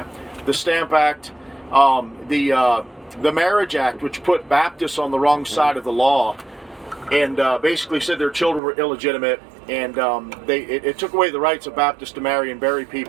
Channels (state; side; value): drops out; left; at 8.6 s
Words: The Stamp Act, the Marriage Act, which put Baptists on the wrong side of the law, and basically said their children were illegitimate, and it took away the rights of Baptists to marry and bury